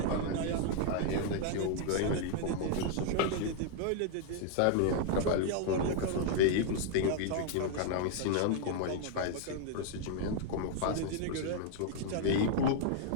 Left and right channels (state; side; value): different; both; correlation 0.00